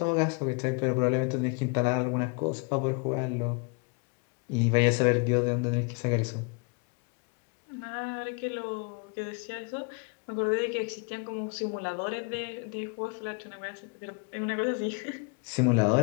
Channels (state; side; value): quieter; right; 33.5 dB